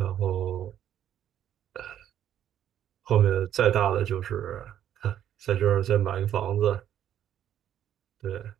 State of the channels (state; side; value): quieter; left; 10.7 dB